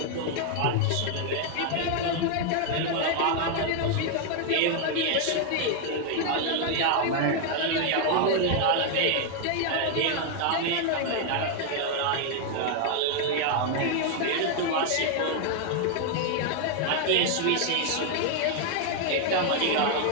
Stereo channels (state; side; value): different; both; correlation 0.00